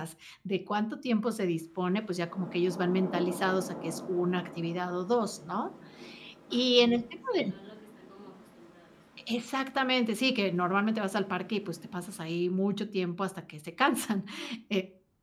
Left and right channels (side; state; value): both; identical; correlation 1.00